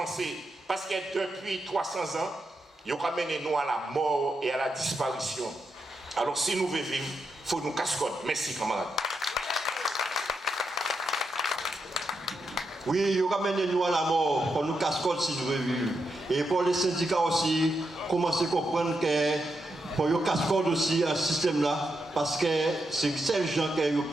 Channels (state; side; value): normal; both; correlation 0.84